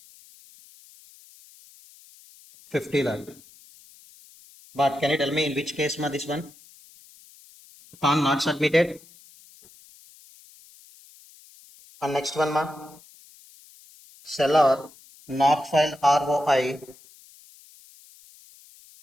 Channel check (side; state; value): left; noise; hiss, 25 dB below the sound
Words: 50 lakh. But can you tell me in which case, ma, this one? PAN not submitted. And next one, ma? Seller not filed ROI